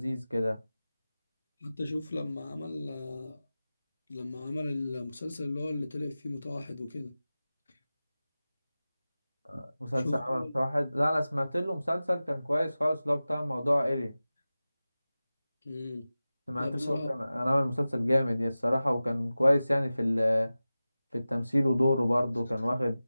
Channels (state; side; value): inverted; both; correlation -0.96